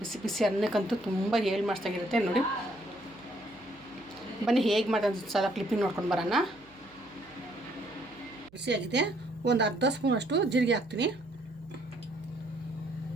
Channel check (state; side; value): noise; right; hum, 28 dB below the sound